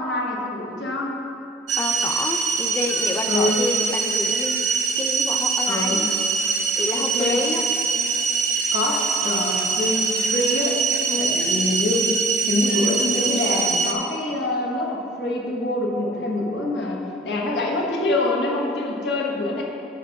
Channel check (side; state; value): both; normal; correlation 0.45